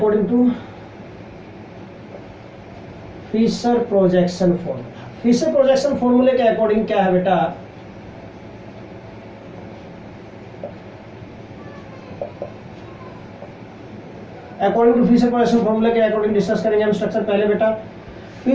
to Fischer projection formula, Fischer projection फॉर्मूले के अकॉर्डिंग क्या है बेटा? अकॉर्डिंग टू फिशर प्रोजेक्शन फॉर्मूले के अकॉर्डिंग डिस्कस करेंगे हम स्ट्रक्चर। पहले बेटा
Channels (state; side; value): identical; both; correlation 1.00